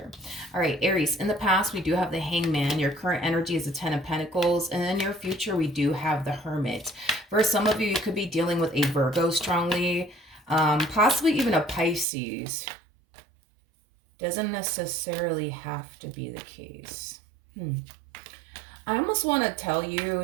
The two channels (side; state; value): left; drops out; at 12.1 s